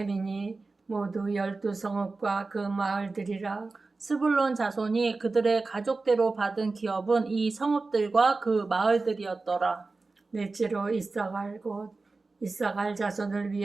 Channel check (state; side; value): quieter; left; 3.7 dB